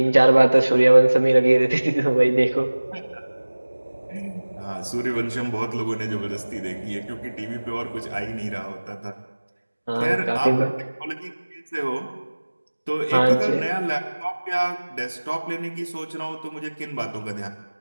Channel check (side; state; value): both; inverted; correlation -1.00